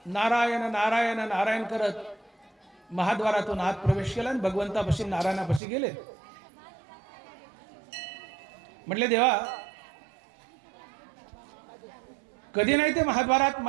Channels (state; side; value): drops out; left; at 5.6 s